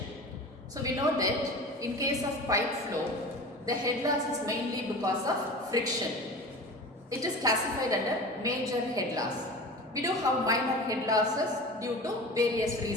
So we know that in case of pipe flow, the head loss is mainly because of friction. It is classified under major head loss. We do have minor head losses due to various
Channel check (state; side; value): normal; both; correlation 0.34